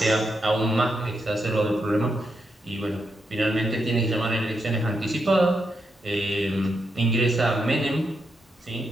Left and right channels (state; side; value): normal; both; correlation 0.83